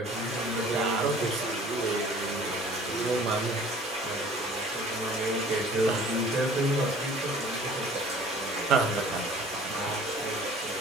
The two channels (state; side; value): normal; both; correlation 0.49